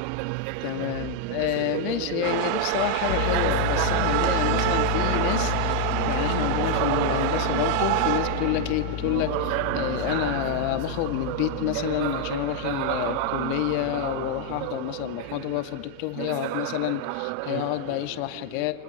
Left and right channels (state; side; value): different; both; correlation 0.00